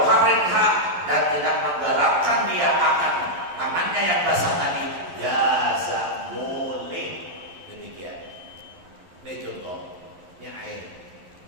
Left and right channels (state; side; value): late; left; 11 ms